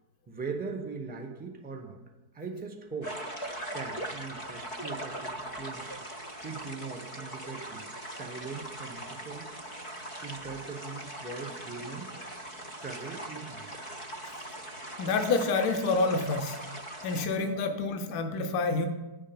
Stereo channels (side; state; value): right; late; 4.6 ms